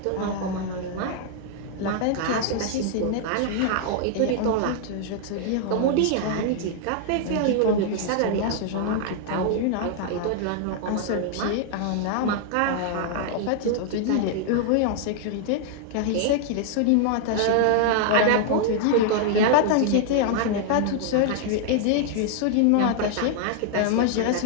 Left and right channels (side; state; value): both; different; correlation 0.00